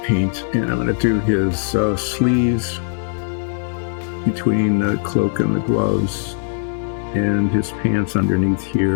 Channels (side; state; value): right; silent; digital silence